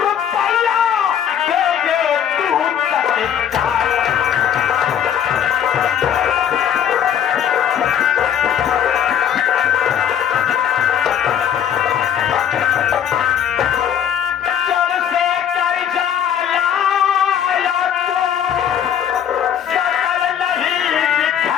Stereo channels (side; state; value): right; quieter; 9.1 dB